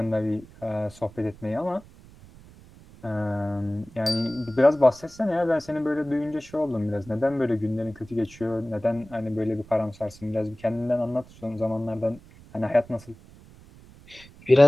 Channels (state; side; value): noise; right; rumble, 22 dB below the sound